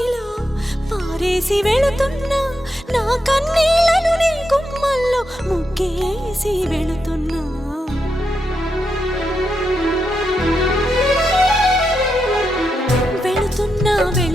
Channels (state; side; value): normal; both; correlation 0.84